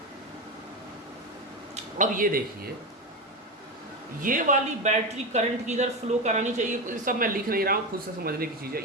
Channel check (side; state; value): both; normal; correlation 0.17